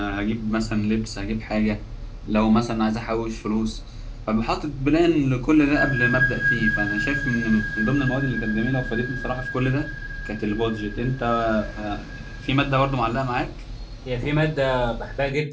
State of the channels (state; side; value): identical; both; correlation 1.00